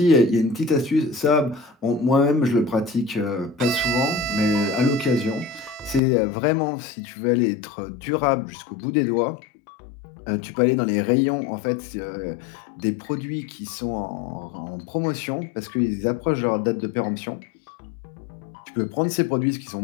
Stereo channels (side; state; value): right; drops out; at 6.0 s